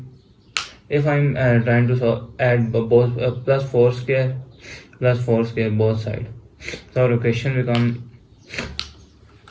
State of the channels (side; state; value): both; identical; correlation 1.00